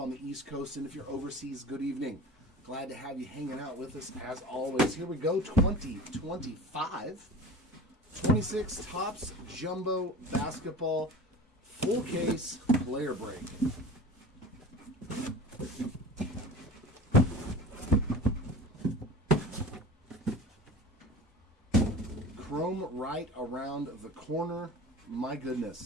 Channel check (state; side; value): normal; both; correlation 0.38